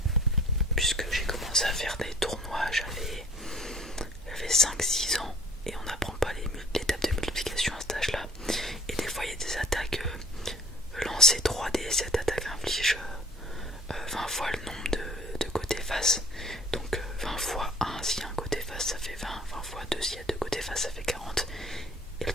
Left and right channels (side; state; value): both; normal; correlation 0.52